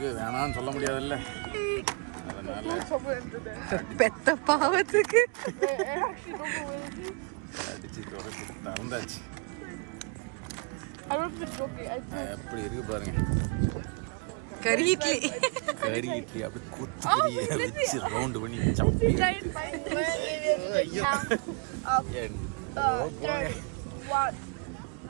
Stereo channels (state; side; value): quieter; left; 35.5 dB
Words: வேணான்னு சொல்ல முடியாதுல்ல, அதனால பெத்த பாவத்துக்கு அடிச்சு தொடச்சி திறந்தாச்சு. எப்படி இருக்கு பாருங்க, கறி இட்லி. கறி இட்லி அப்படி கொத்து கறியை வச்சு ரவுண்டு பண்ணி சப்பி ஐயோ போங்க